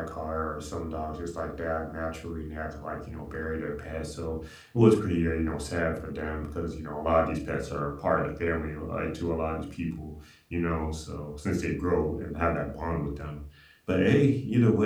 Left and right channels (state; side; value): identical; both; correlation 1.00